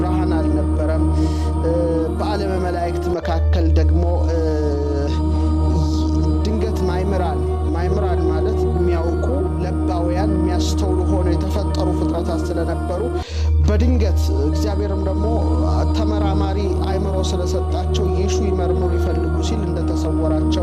አልነበረም። በዓለመ መላእክት መካከል ደግሞ ድንገት ማይምራን ማለት የሚያውቁ ለባውያን የሚያስተውሉ ሆነው የተፈጠሩ ፍጥረታት ስለነበሩ በድንገት እግዚአብሔርም ደግሞ ተመራማሪ አእምሮ ስለሰጣቸው ይሹ ይመርምሩ ይፈልጉ ሲል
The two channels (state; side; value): identical; both; correlation 1.00